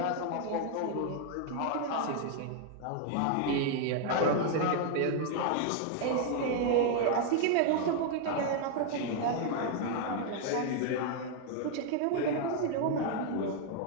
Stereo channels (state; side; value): different; both; correlation 0.00